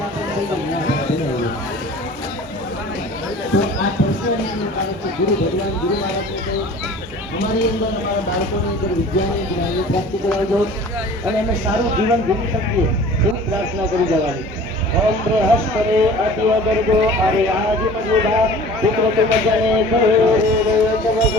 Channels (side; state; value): both; normal; correlation 0.44